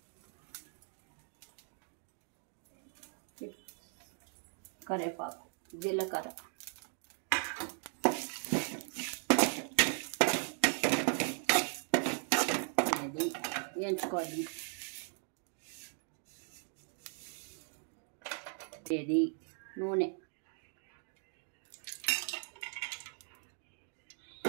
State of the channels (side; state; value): left; silent; 52 dB below the other